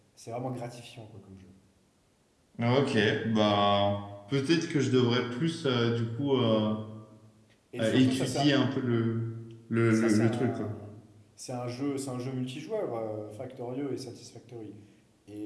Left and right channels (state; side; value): identical; both; correlation 1.00